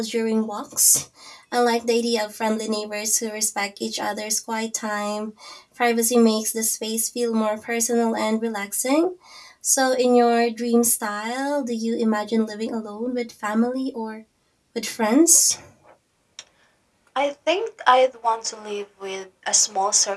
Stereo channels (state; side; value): identical; both; correlation 1.00